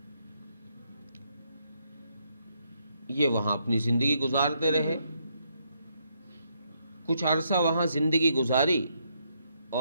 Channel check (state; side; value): inverted; both; correlation -0.76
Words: یہ وہاں اپنی زندگی گزارتے رہے. کچھ عرصہ وہاں زندگی گزاری،